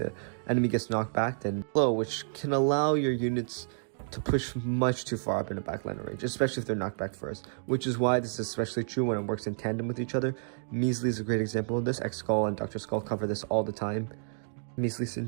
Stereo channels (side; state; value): left; silent; digital silence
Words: enemy gets knocked back. Then slow, which can allow your units to push much too far up into backliner range, especially if they're knocked back first, which is why this is especially true when it works in tandem with each other. Measly is a great example of this. X-Skull and Dr. Skull cover this all the time. Measly